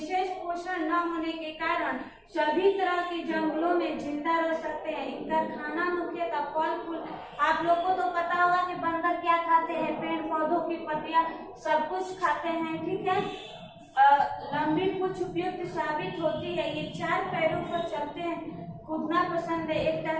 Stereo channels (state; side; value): identical; both; correlation 1.00